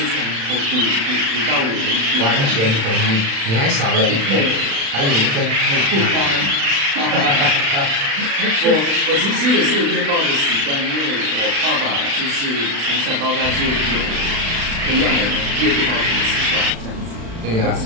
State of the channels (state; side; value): late; left; 36 ms